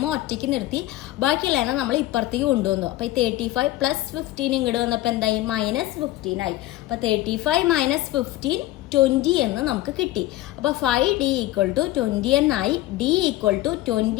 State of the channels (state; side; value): quieter; right; 16.2 dB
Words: ഒറ്റയ്ക്ക് നിർത്തി ബാക്കിയുള്ളതിനെ നമ്മൾ ഇപ്പുറത്തേക്ക് കൊണ്ടുവന്നു. അപ്പോൾ ഈ 35 പ്ലസ് 15 ഇങ്ങോട്ട് വന്നപ്പോൾ എന്തായി, -15 ആയി. അപ്പോൾ 35 മൈനസ് 15 20 എന്ന് നമുക്ക് കിട്ടി. അപ്പോൾ 5D ഈക്വൽ ടു 20 എന്നായി. D equal to